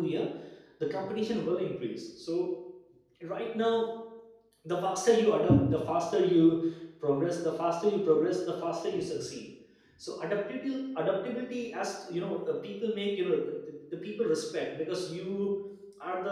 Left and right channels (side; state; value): both; identical; correlation 1.00